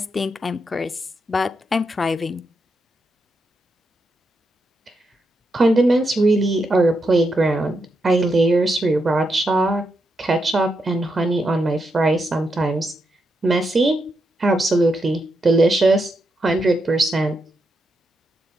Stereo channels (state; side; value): normal; both; correlation 0.83